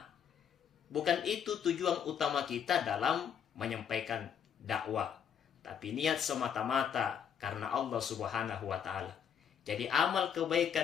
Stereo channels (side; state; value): right; quieter; 8.1 dB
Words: Bukan itu tujuan utama kita dalam menyampaikan dakwah, tapi niat semata-mata karena Allah Subhanahu wa taala. Jadi amal